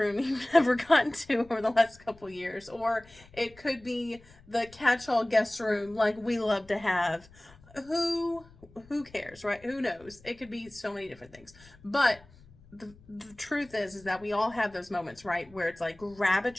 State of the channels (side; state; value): left; noise; rumble, 25 dB below the sound